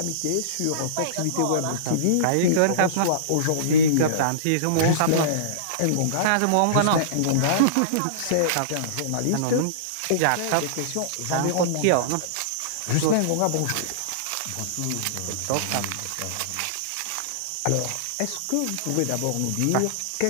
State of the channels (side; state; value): both; different; correlation -0.03